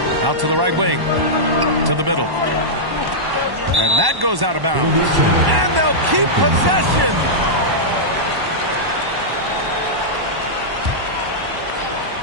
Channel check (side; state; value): left; late; 1.1 ms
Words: Out to the right wing. To the middle. And that goes out of bounds. And they'll keep possession.